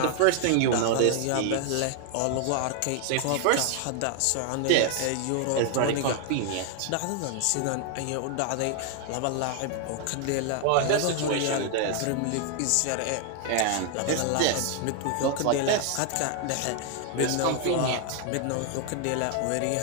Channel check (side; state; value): both; different; correlation 0.00